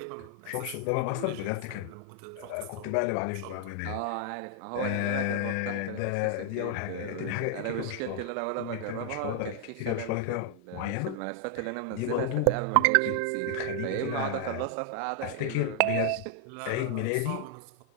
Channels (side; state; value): both; different; correlation 0.00